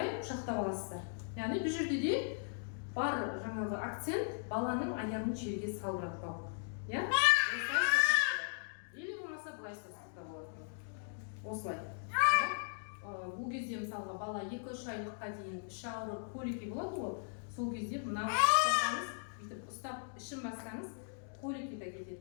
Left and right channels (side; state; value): right; silent; digital silence